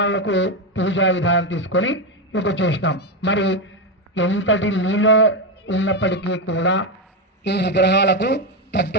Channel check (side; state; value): both; normal; correlation 0.09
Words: పూజా విధానం తీసుకొని ఇక చేసినాం. మరి ఎంతటి నీళ్ళ ఉన్నప్పటికీ కూడా ఈ విగ్రహాలకు